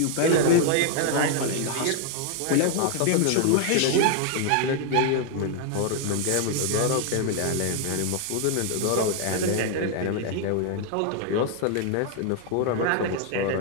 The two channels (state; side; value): different; both; correlation 0.00